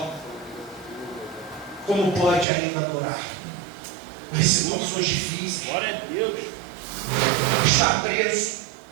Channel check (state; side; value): drops out; left; at 2.5 s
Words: como pode ainda adorar? Nas situações difíceis. Glória a Deus. Está preso